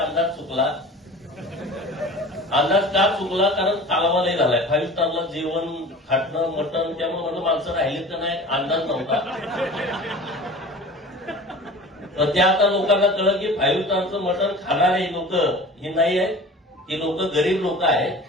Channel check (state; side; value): normal; both; correlation 0.40